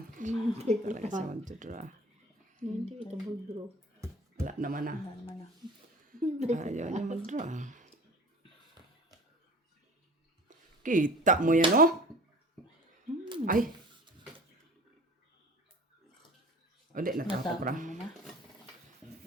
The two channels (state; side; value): normal; both; correlation 0.43